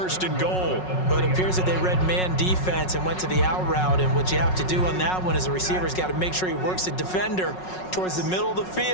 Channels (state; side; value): late; right; 5.4 ms